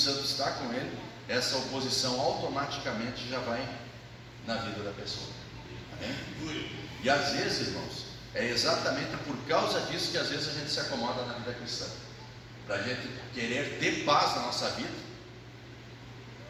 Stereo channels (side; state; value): both; identical; correlation 1.00